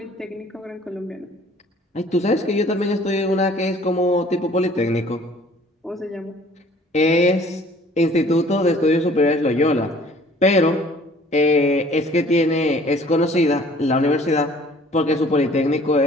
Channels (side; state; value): both; normal; correlation 0.53